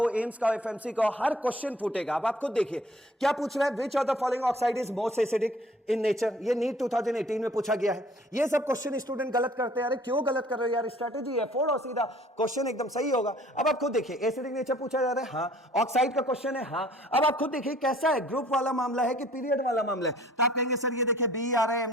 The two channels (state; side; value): normal; both; correlation 0.54